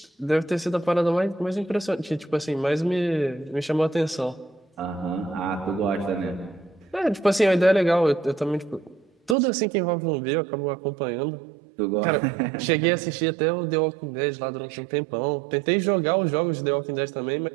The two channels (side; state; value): left; drops out; at 9.3 s